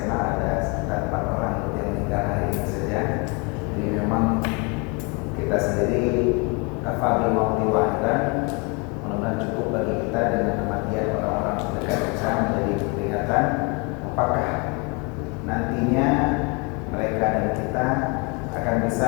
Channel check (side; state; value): right; quieter; 31.4 dB